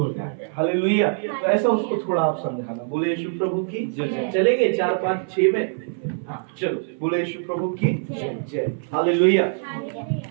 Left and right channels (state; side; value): silent; left; 57 dB below the other